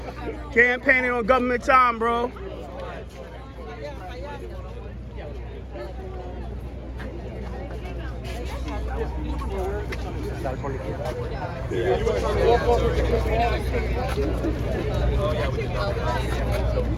Campaigning on government time, bro.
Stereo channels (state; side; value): identical; both; correlation 1.00